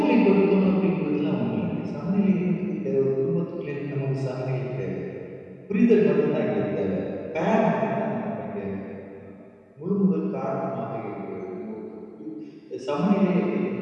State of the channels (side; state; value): both; identical; correlation 1.00